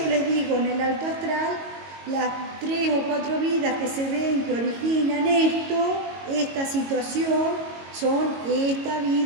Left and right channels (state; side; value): late; left; 22 ms